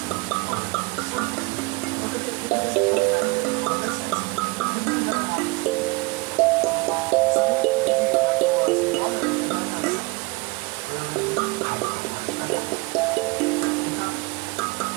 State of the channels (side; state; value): left; quieter; 25.3 dB